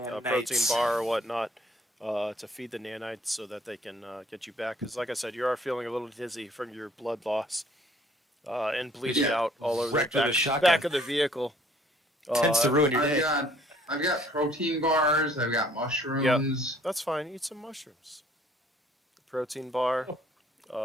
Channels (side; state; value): both; normal; correlation 0.59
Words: a protein Nanites. bar or whatnot, to feed the nanites so that they can get you back. Because, like I said, you are feeling a little dizzy from your blood loss and bleeding Yeah. out all over Wrecked the with a back, shotgun. back of the vehicle. Tends to ruin your I've day. got protein bars. I've got mushrooms. That's fine. Eat some mushrooms. Protein bar.